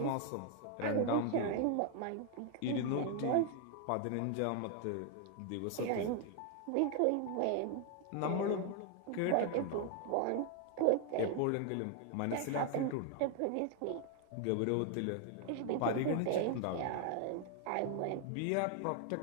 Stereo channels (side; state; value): both; different; correlation 0.00